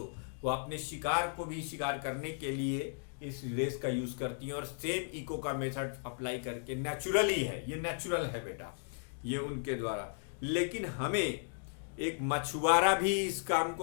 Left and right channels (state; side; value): silent; right; digital silence